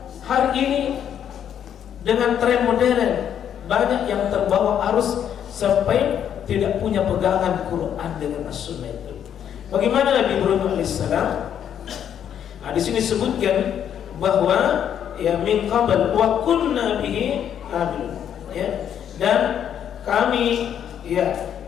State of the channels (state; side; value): quieter; right; 9.3 dB